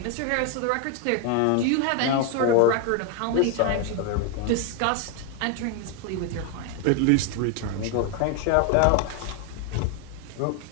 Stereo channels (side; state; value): both; different; correlation 0.01